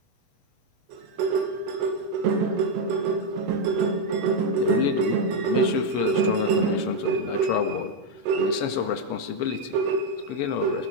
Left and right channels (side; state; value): left; late; 8.2 ms